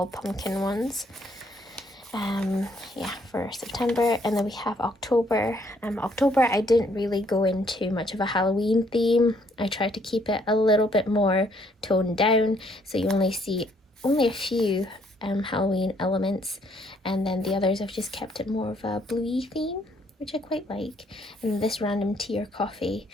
pumpkin ones. Yeah, for September. And then we have October. October, I didn't really go into much of a Halloween theme. I tried to keep it a little bit more toned down, so you only see a few Halloween elements, and then the others I've just kept it more of a bluey theme, which I quite like. And this random tea or coffee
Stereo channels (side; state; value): both; normal; correlation 0.68